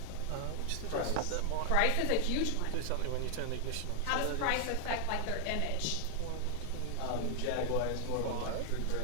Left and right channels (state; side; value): different; both; correlation 0.00